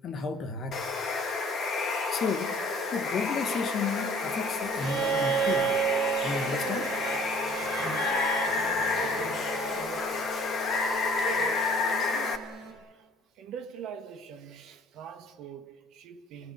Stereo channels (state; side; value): normal; both; correlation 0.54